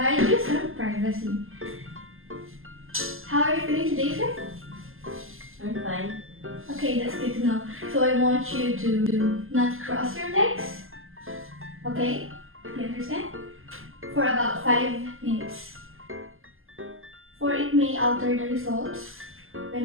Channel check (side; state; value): left; late; 0.60 ms